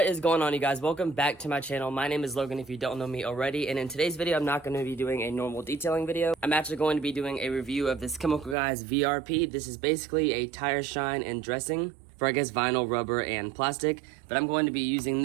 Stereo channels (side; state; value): left; drops out; at 8.6 s